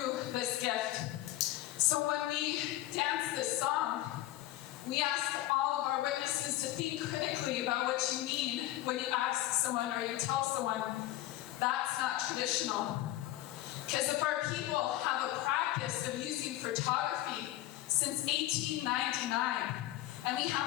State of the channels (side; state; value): right; quieter; 15.3 dB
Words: this gift. So when we dance this song, we ask all of our witnesses to think critically about what you mean when you ask someone or you tell someone, that's not traditional. Because if our people have a practice of using photography since 1899, and we